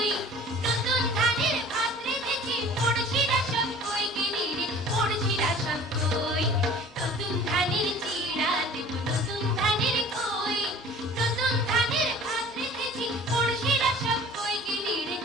নতুন ধানের ভাত রেঁধেছি, পড়শিরা সব কই গেলি রে, পড়শিরা সব কই।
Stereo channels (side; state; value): both; normal; correlation 0.46